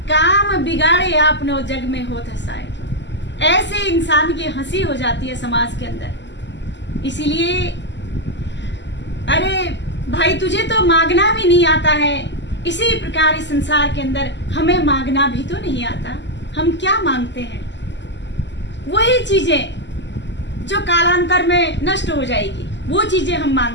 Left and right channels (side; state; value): right; late; 0.52 ms